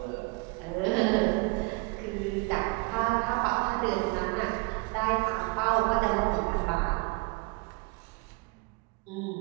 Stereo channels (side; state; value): left; quieter; 28.6 dB